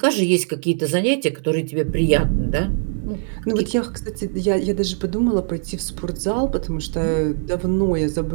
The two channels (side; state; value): left; silent; 65 dB below the other